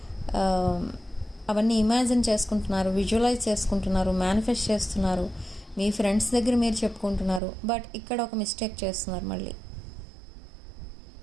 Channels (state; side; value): drops out; left; at 7.4 s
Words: అవన్నీ ఇమాజిన్ చేసుకుంటున్నారు, విజువలైజ్ చేసుకుంటున్నారు, మేనిఫెస్ట్ చేస్తున్నారు. మీ ఫ్రెండ్స్ దగ్గర మీరు చెప్పుకుంటున్నారు. బట్ ఇక్కడ ఒక మిస్టేక్ చేస్తున్నారు. మళ్ళీ